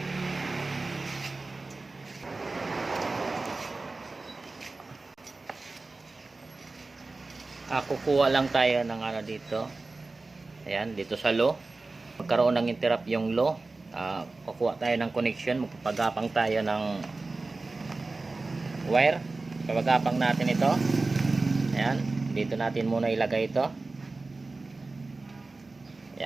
Kukuha lang tayo ng dito. Ayan, dito sa low. Magkaroon ng interrupt yung low. Kukuha tayo ng connection. Magpapagapang tayo ng wire. Pagapang natin ito. Ayan, dito natin muna ilagay ito.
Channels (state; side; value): quieter; left; 3.5 dB